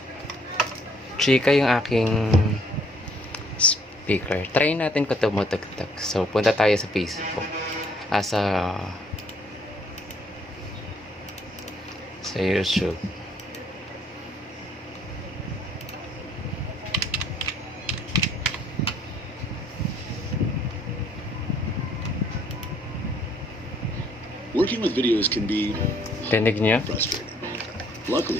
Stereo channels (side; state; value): both; normal; correlation 0.64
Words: Chika yung aking speaker. Try natin kung tumutugtog. So, punta tayo sa Facebook. Sa YouTube. Working with videos can be Tinig niya? frustrating.